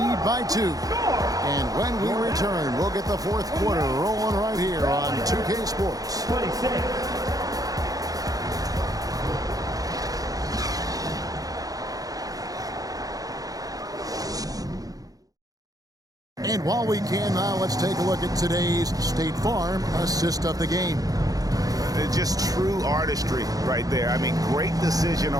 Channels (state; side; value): late; left; 0.18 ms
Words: by 2. And when we return, we'll get the fourth quarter rolling right here on 2K Sports. 26. And while we can now, let's take a look at today's State Farm assist of the game. Just true artistry right there. I mean, great decision